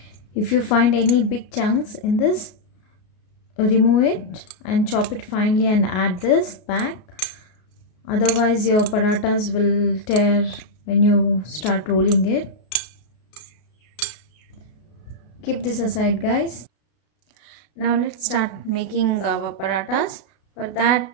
If you find any big chunks in this, remove it and chop it finely and add this back. Otherwise your parathas will tear when you start rolling it. Keep this aside, guys. Now let's start making our parathas. For that,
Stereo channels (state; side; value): late; right; 33 ms